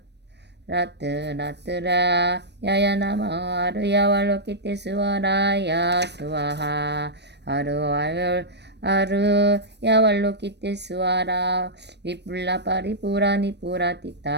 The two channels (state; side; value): late; left; 0.50 ms